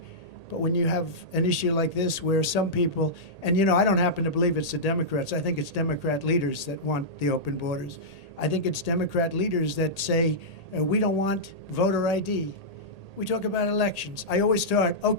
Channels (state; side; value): late; right; 1.8 ms